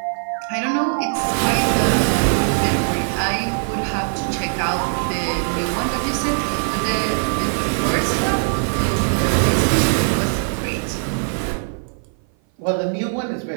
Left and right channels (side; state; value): left; silent; 57 dB below the other